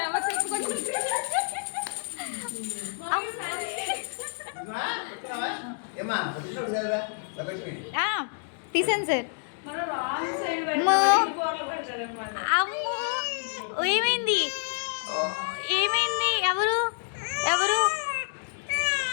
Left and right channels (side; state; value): right; silent; digital silence